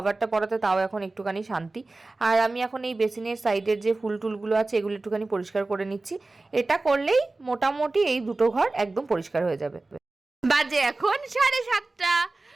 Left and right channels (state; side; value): quieter; left; 3.2 dB